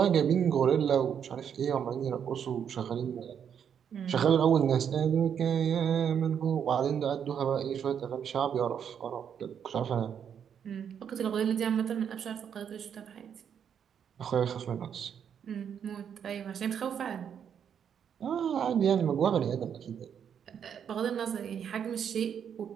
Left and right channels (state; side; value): quieter; left; 8.1 dB